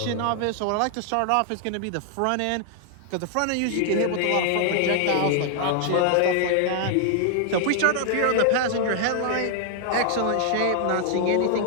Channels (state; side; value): different; both; correlation 0.00